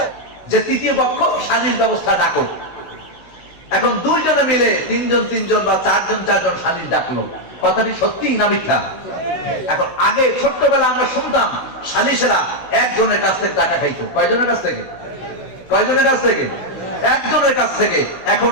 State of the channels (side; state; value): right; late; 16 ms